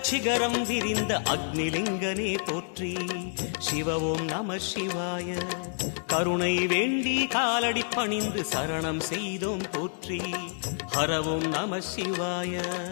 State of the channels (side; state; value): right; silent; digital silence